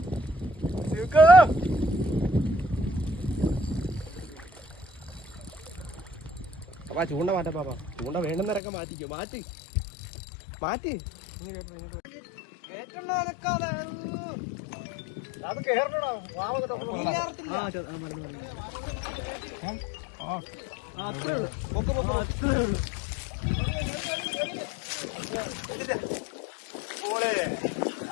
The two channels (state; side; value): drops out; right; at 8.6 s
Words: അപ്പാ ചൂണ്ട മാറ്റാ പാപ്പാ ചൂണ്ട വേണ്ടുന്നവരൊക്കെ മാറ്റിക്കോ മാറ്റി മാറ്റി അത് കേറണോ അത്രേ ഉള്ളു അത്രേ ഉള്ളു